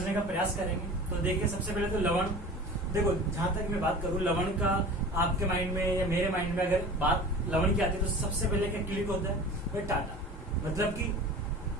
का प्रयास करेंगे। तो देखिए सबसे पहले तो लवण, देखो जहां तक मैं बात करूं लवण का, आपके माइंड में या मेरे माइंड में अगर बात लवण की आती है तो सबसे पहले क्या क्लिक होता है वह टाटा, मतलब कि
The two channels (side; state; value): both; normal; correlation 0.39